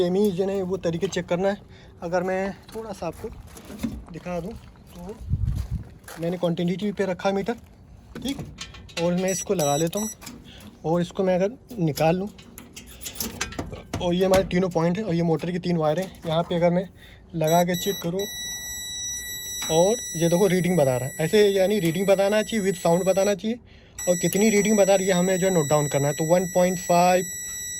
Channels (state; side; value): identical; both; correlation 1.00